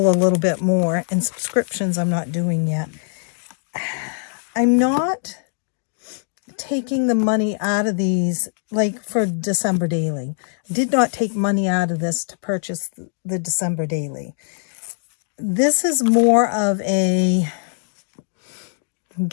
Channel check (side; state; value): right; silent; digital silence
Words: a little bit more. And subscriptions I'm not doing yet. I'm not taking the money out of these, like for December Daily. I did not take money out of this to purchase the December Daily. This is more of a